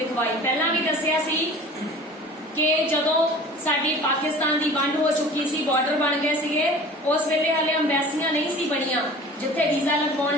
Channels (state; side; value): normal; both; correlation 0.42